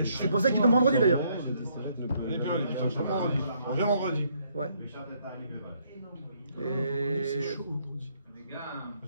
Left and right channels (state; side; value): inverted; both; correlation -0.70